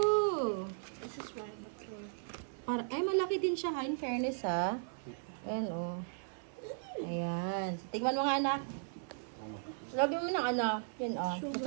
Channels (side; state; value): left; silent; 53 dB below the other